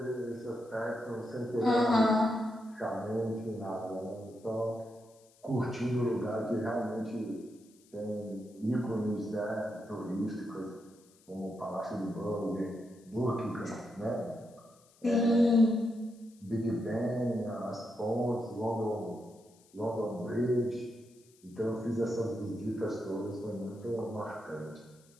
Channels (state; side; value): noise; left; hiss, 29 dB below the sound